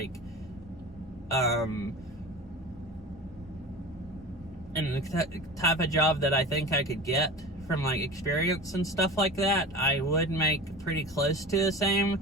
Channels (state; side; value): normal; both; correlation 0.34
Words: and the type of job that I think I could get from like experience and stuff like that, I would make pretty close to the same.